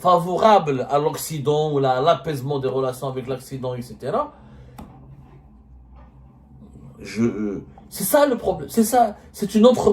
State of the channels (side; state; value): both; identical; correlation 1.00